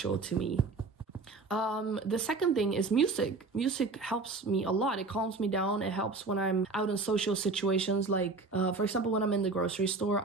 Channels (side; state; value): left; quieter; 3.8 dB